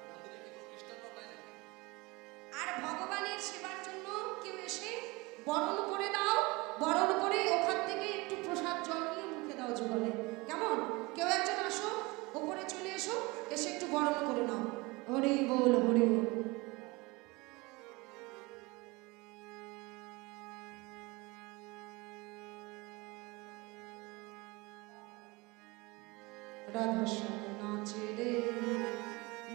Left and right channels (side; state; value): left; quieter; 24.3 dB